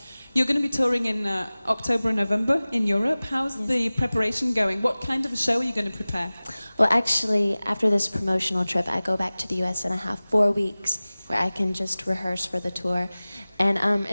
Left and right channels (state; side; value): inverted; both; correlation -0.98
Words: You're going to be touring in October and November in Europe. How's the preparation going? What kind of a show are you going to prepare? Well, actually, after this promotional trip, I go back to the US and I have 4 weeks where I can just rehearse for the tour. And